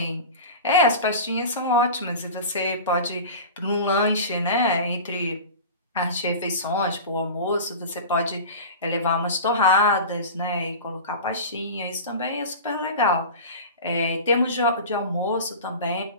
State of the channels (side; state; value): both; inverted; correlation -0.32